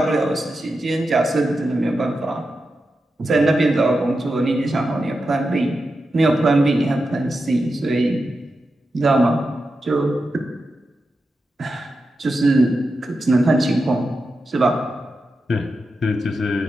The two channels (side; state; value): both; normal; correlation 0.89